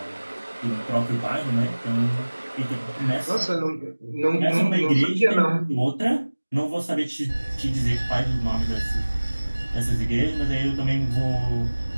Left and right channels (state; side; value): inverted; both; correlation -1.00